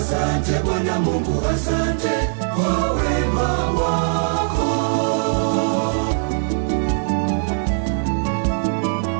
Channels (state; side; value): silent; left; 65 dB below the other